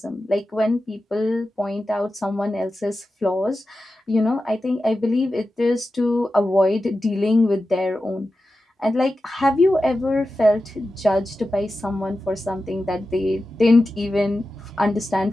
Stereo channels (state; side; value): normal; both; correlation 0.92